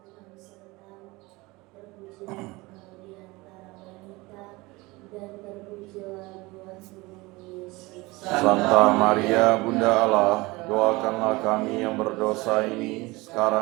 Santa Maria Bunda Allah, doakanlah kami yang berdosa ini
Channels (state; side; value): quieter; left; 22.6 dB